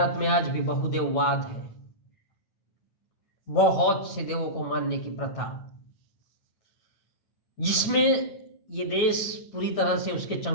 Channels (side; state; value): right; late; 9.2 ms